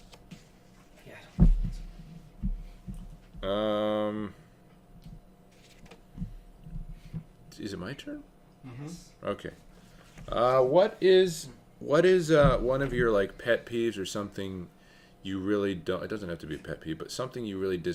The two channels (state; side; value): identical; both; correlation 1.00